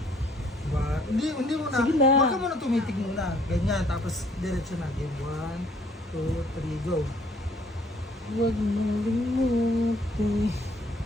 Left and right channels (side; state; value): both; normal; correlation 0.62